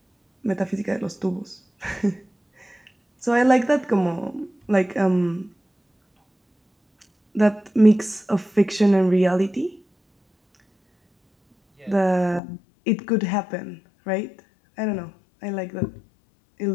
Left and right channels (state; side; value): drops out; right; at 12.4 s